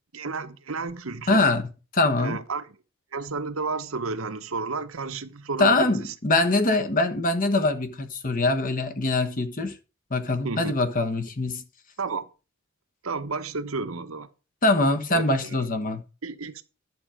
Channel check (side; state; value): both; normal; correlation 0.16